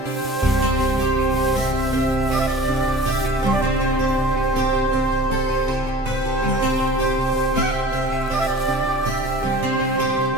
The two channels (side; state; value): both; normal; correlation 0.42